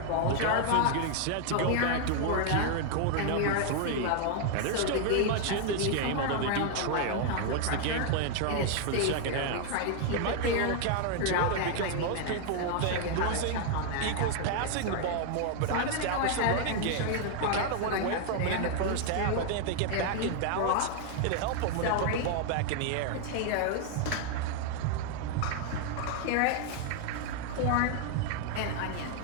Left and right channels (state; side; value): different; both; correlation 0.00